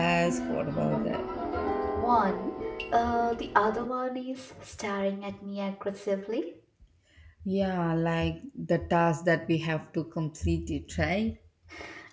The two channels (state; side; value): identical; both; correlation 1.00